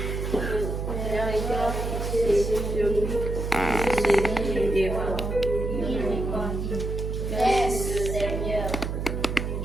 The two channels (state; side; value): noise; right; hum, 3 dB below the sound